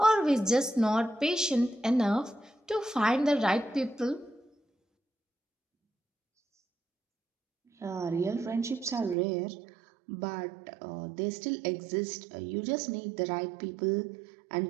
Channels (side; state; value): left; drops out; at 9.2 s